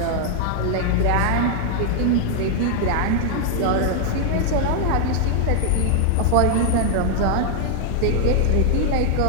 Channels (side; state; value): both; different; correlation 0.00